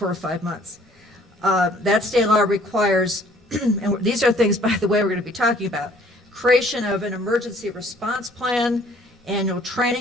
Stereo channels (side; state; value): both; normal; correlation 0.58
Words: or 5 months. That state law requires, and these are things, by the way, we're going to be talking about, creation of an emergency response plan, annual